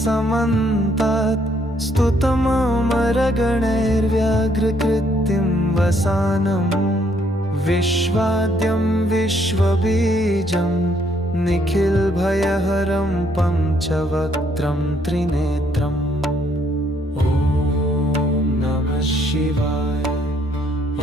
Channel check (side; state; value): both; normal; correlation 0.69